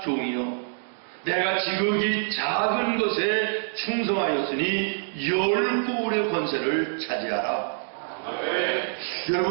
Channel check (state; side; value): silent; left; digital silence